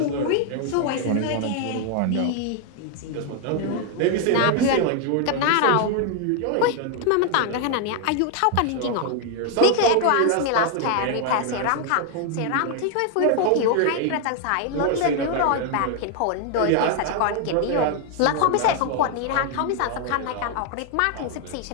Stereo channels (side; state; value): both; different; correlation 0.00